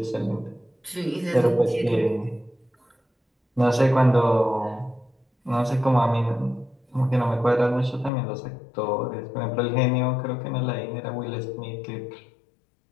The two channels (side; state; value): right; drops out; at 8.1 s